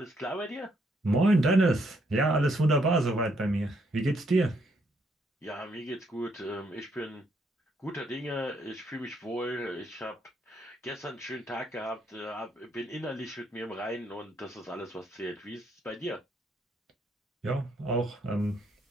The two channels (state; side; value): normal; both; correlation 0.73